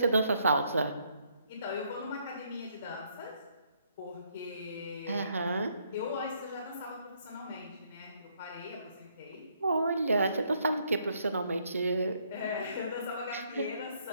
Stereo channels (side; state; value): both; inverted; correlation -0.70